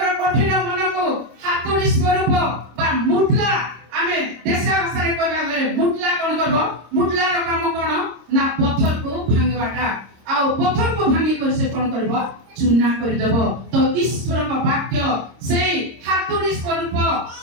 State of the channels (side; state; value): left; late; 26 ms